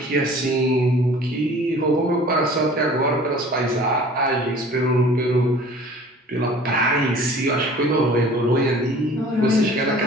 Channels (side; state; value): both; normal; correlation 0.47